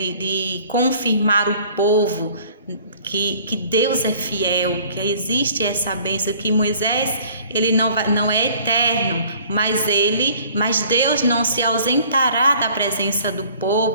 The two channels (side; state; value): both; inverted; correlation -0.53